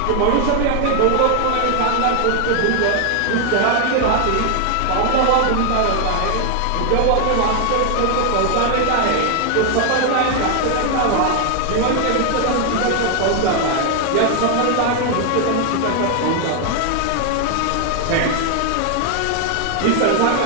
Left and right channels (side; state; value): both; different; correlation 0.00